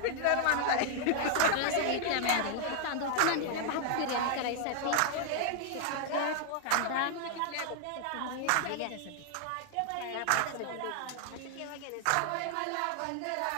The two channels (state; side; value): different; both; correlation 0.00